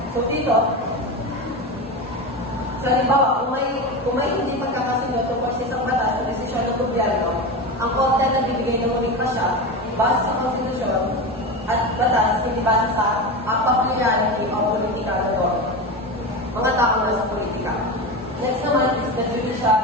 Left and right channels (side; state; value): both; normal; correlation 0.22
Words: So, dito, sa halimbawa, kung may hindi pagkakasunod tungkol sa isang batas o desisyon ng gobyerno, ang korte na bibigay ng muling pasya base sa konstitusyon at batas, hindi base sa popularity o politika ng mga tao na sa politika. Next naman is the